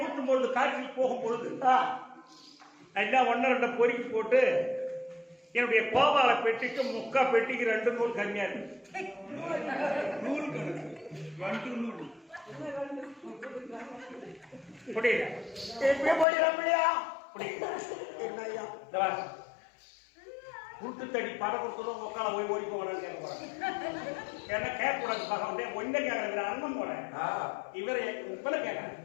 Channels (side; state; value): right; drops out; at 16.2 s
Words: பொழுது காற்றில் போகும் பொழுது எல்லாம் 1-2 பொறுக்கி போட்டு என்னுடைய கோபால பெட்டிக்கு முக்கா பெட்டிக்கு 2 நூல் கம்மியா இருக்கு. நூல் கணக்கு 2 நூல் புரியல. எப்படி போயிடலாம் இல்லையா? புரியல. என்ன ஐயா? இந்த வா. குருட்டு தடி பட கொடுத்ததும் உட்கால போய் ஓடி போகிறான்னு கேட்க போறேன். ஏன்னா கேட்கக்கூடாது பார்க்க ஒன்றை கேட்கறது அண்ணன் போறேன். இவரை இப்பல கேட்கறேன்.